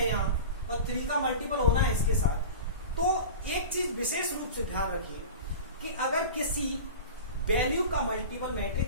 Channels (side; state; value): both; inverted; correlation -0.32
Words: यहाँ और 3 का मल्टीपल होना है इसके साथ, तो एक चीज विशेष रूप से ध्यान रखिए कि अगर किसी वैल्यू का मल्टीपल